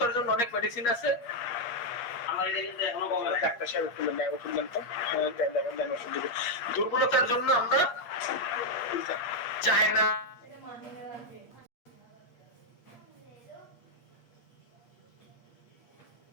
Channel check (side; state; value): right; late; 8.4 ms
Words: জন্য অনেক মেডিসিন আছে। দুর্বলতার জন্য আমরা চায়না